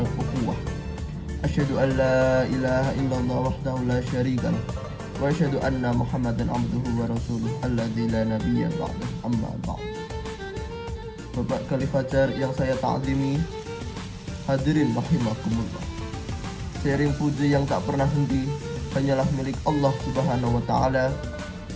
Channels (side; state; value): both; identical; correlation 1.00